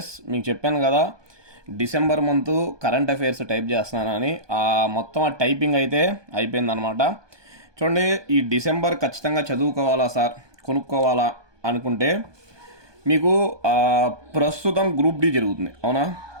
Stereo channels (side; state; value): left; late; 1.2 ms